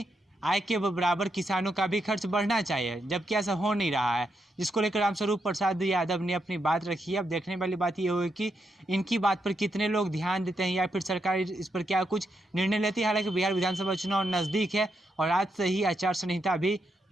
आय के बराबर किसानों का भी खर्च बढ़ना चाहिए, जबकि ऐसा हो नहीं रहा है, जिसको लेकर रामस्वरूप प्रसाद यादव ने अपनी बात रखी है। अब देखने वाली बात ये होगी कि इनकी बात पर कितने लोग ध्यान देते हैं या फिर सरकार इस पर क्या कुछ निर्णय लेती है। हालांकि बिहार विधानसभा चुनाव नज़दीक है और आज से ही आचार संहिता भी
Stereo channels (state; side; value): normal; both; correlation 0.82